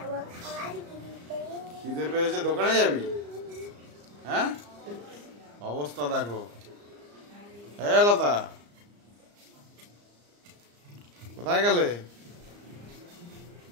খাবার কিনতে। খিদে পেয়েছে, দোকানে যাবি? হ্যাঁ, অবস্থা দেখো। হ্যাঁ লতা, কোথায় গেলে?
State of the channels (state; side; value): late; left; 34 ms